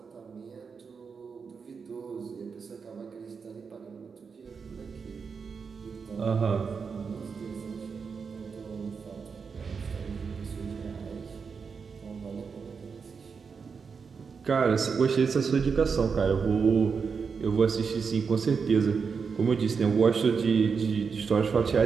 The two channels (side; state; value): left; quieter; 5.6 dB